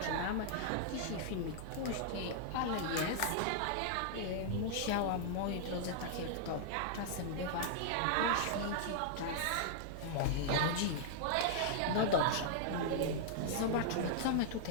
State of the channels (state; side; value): different; both; correlation -0.01